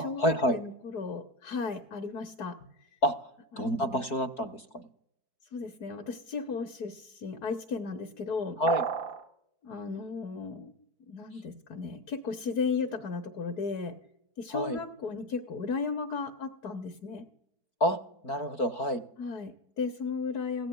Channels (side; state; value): right; late; 4.8 ms